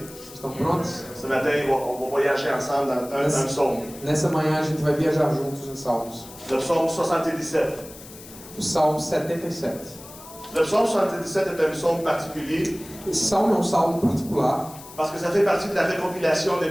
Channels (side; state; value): left; noise; hiss, 17 dB below the sound